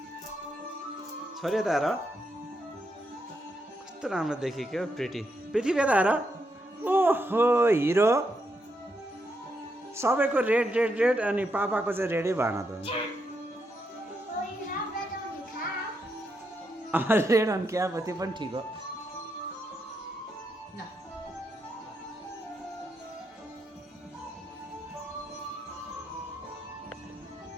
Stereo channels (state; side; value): normal; both; correlation 0.81